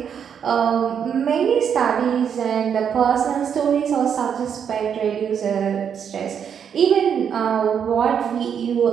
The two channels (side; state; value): left; quieter; 7.8 dB